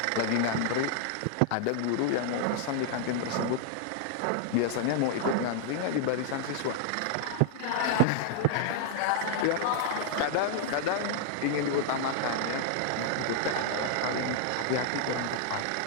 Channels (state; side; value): different; both; correlation 0.00